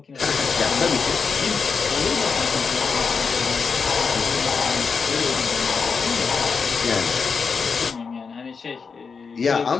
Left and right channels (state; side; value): quieter; right; 5.4 dB